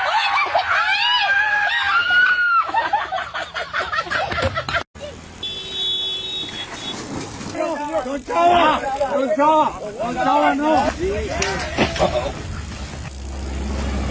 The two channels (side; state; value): both; identical; correlation 1.00